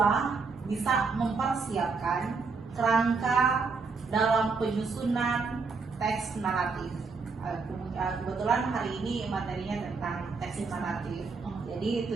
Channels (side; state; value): left; quieter; 4.6 dB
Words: bisa mempersiapkan kerangka dalam penyusunan teks naratif. Kebetulan hari ini materinya tentang teks naratif. Jadi